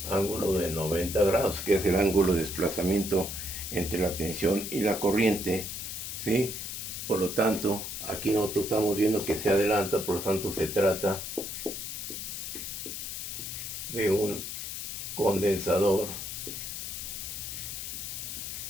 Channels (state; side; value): noise; left; hiss, 6 dB below the sound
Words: ángulo de 90 grados, que es el ángulo de desplazamiento entre la tensión y la corriente, ¿sí? Por lo tanto, aquí nosotros estamos viendo que se adelanta, por lo tanto se trata de un condensador